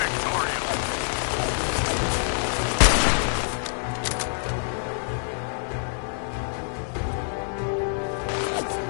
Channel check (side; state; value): right; silent; digital silence